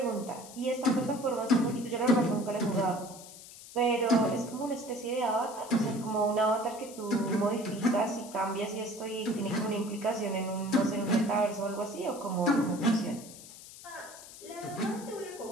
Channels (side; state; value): left; noise; hiss, 16 dB below the sound